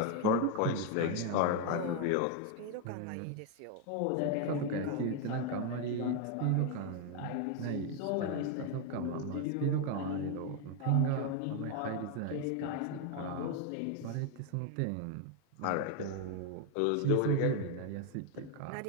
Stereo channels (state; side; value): different; both; correlation 0.01